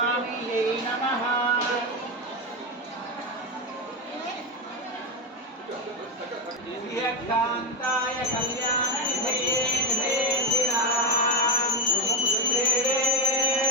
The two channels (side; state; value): both; normal; correlation 0.11